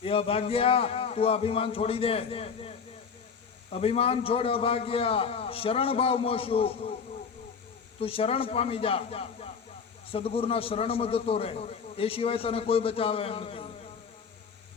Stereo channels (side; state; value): right; quieter; 6.1 dB